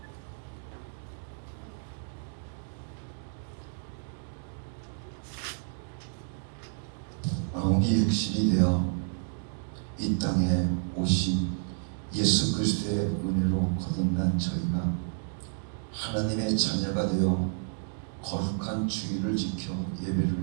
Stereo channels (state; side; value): silent; left; digital silence